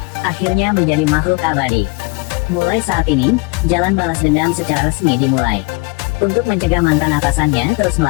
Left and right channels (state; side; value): quieter; right; 27.7 dB